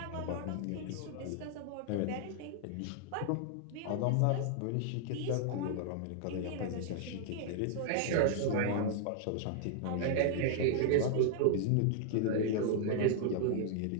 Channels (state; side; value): different; both; correlation -0.01